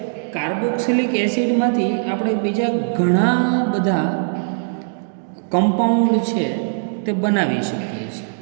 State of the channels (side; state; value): left; silent; digital silence